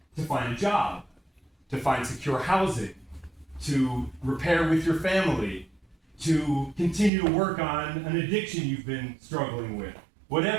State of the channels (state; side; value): drops out; left; at 7.1 s